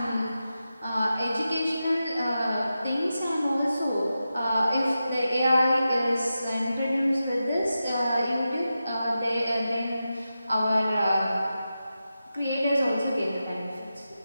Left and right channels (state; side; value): inverted; both; correlation -0.91